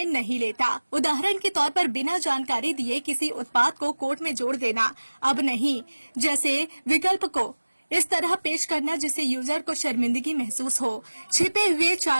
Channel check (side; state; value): both; inverted; correlation -1.00